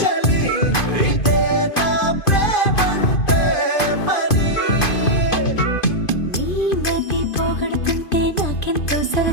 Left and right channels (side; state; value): right; late; 2.5 ms